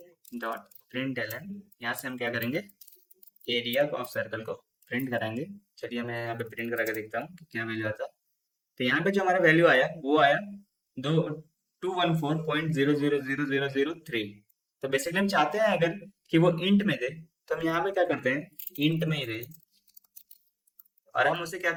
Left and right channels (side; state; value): both; identical; correlation 1.00